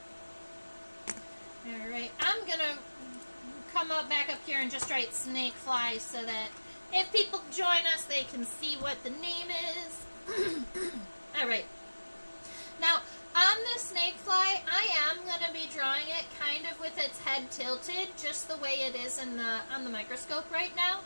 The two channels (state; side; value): inverted; both; correlation -1.00